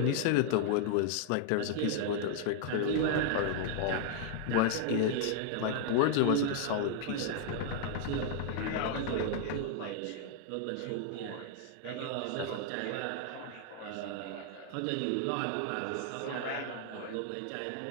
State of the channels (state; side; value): different; both; correlation -0.01